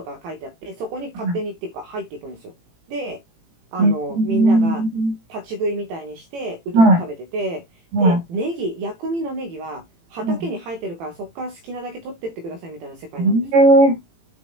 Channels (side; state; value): left; late; 18 ms